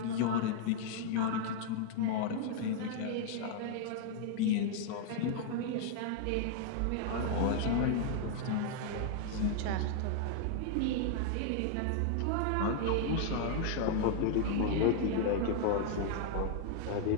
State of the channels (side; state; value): both; different; correlation 0.00